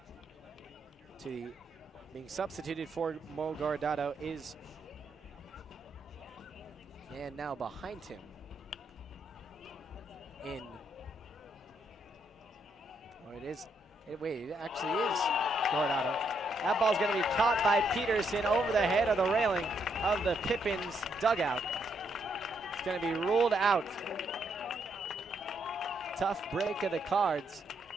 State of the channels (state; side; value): normal; both; correlation 0.76